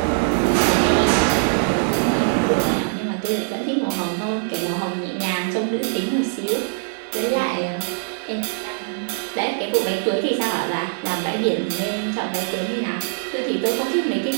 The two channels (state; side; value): silent; left; 64 dB below the other